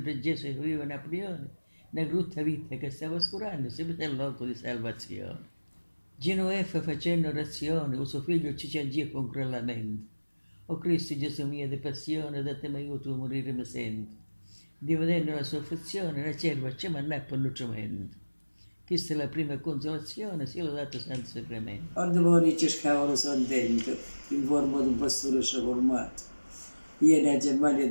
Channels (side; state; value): both; inverted; correlation -1.00